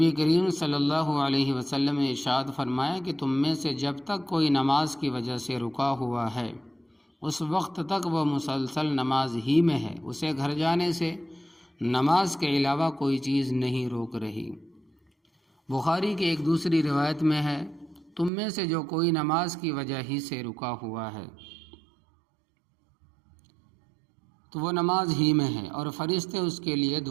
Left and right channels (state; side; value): drops out; left; at 18.3 s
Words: کریم صلی اللہ علیہ وسلم نے ارشاد فرمایا کہ تم میں سے جب تک کوئی نماز کی وجہ سے رکا ہوا ہے اس وقت تک وہ مسلسل نماز ہی میں ہے، اسے گھر جانے سے نماز کے علاوہ کوئی چیز نہیں روک رہی۔ بخاری کی ایک دوسری روایت میں ہے، تم میں سے جو کوئی نماز کی وجہ ہی سے رکا ہوا ہے تو وہ نماز ہی میں ہے، اور فرشتے اس کے لیے